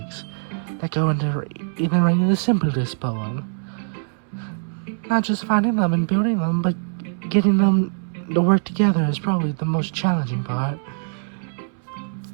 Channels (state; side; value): silent; left; 64 dB below the other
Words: that go into even writing the simplest poem. Not just finding them and building them, but getting them to work together is probably the most challenging part.